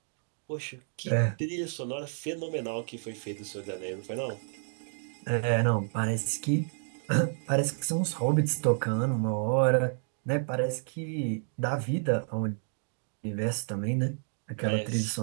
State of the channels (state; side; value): silent; left; digital silence